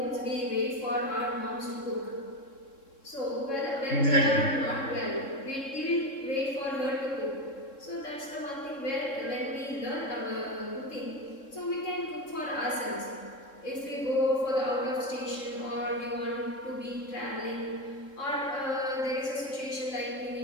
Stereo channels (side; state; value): right; late; 3.7 ms